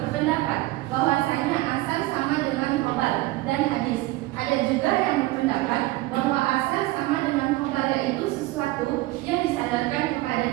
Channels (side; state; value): left; quieter; 18.5 dB